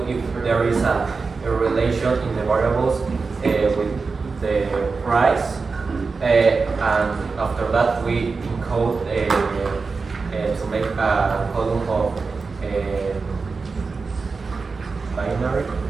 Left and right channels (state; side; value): quieter; left; 4.5 dB